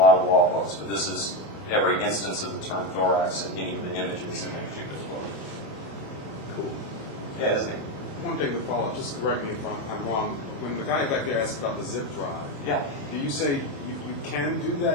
of law books, but this is every instance of the term thorax in any of the images in that particular book. Cool. Yeah, isn't it? One thing to follow up, just correct me if I'm wrong. When the guy back there asked about the zip drive, Yeah. do you say you can do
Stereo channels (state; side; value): late; right; 28 ms